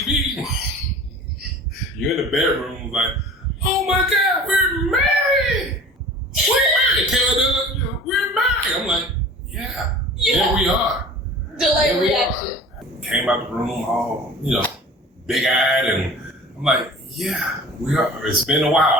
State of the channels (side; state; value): both; normal; correlation 0.42